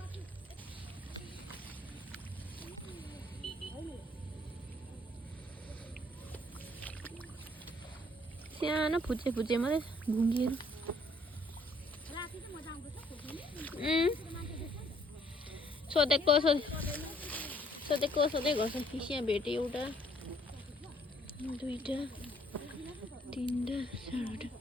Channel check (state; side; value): normal; both; correlation 0.63